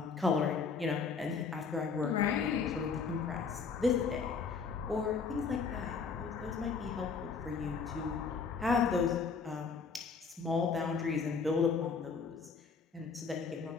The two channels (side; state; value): right; quieter; 5.3 dB